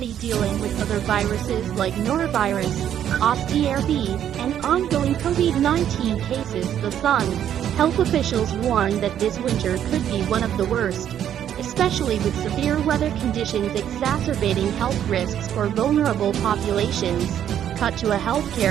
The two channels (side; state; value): left; quieter; 10.1 dB